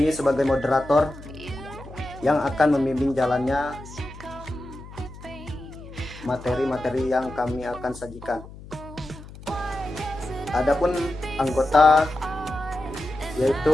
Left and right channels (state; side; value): noise; left; hum, 16 dB below the sound